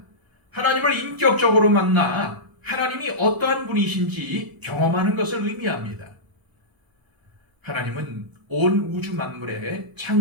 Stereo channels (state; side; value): late; left; 1.0 ms